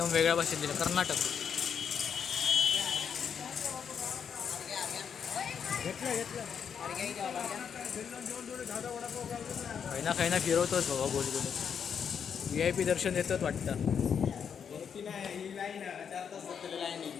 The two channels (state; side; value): quieter; right; 7.3 dB